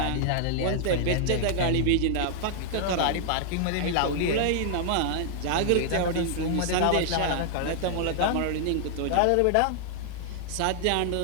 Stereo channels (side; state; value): both; different; correlation 0.00